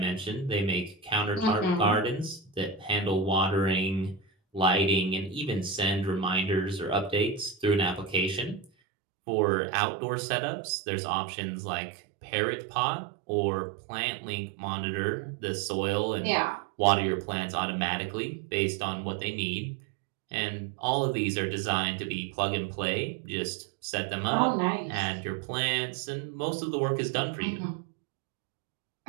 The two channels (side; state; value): left; drops out; at 8.7 s